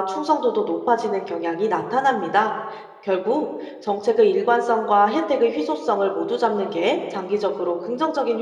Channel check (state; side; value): identical; both; correlation 1.00